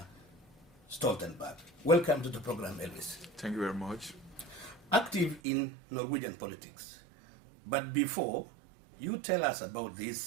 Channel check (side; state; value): left; drops out; at 5.4 s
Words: Stoltenberg. Welcome to the program, Elvis. Thank you very much. Active in Norwegian politics. But before you tell us about